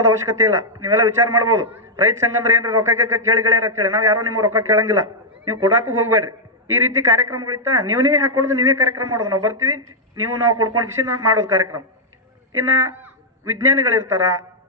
ಅವಶ್ಯಕತೆ ಇಲ್ಲ. ನೀವೆಲ್ಲ ವಿಚಾರ ಮಾಡ್ಬೋದು, ರೈತ ಸಂಘ ಅಂದ್ರೆ ಏನ್ರಿ ರೊಕ್ಕ ಕೇಳಿಗಳೇರ ಅಂತೇಳಿ. ನಾವು ಯಾರೋ ನಿಮ್ಗೆ ರೊಕ್ಕ ಕೇಳಂಗಿಲ್ಲ, ನೀವು ಕೊಡಾಕು ಹೋಗ್ಬೇಡ್ರಿ. ಈ ರೀತಿ ಕಾರ್ಯಕ್ರಮಗಳಿತ್ತ ನೀವೇ ಹಾಕೊಳ್ಳೋದು, ನೀವೇ ಕಾರ್ಯಕ್ರಮ ಮಾಡೋದು. ನಾವು ಬರ್ತೀವಿ, ನಾವು ಕೊಡ್ಕೊಂಡು ಕಿಸಿ ಮಾಡೋದು ಕಾರ್ಯಕ್ರಮ. ಇನ್ನ ವಿಜ್ಞಾನಿಗಳಿರ್ತಾರ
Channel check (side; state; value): both; normal; correlation -0.05